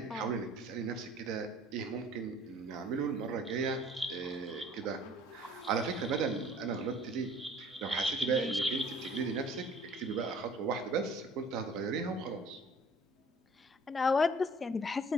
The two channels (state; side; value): normal; both; correlation 0.53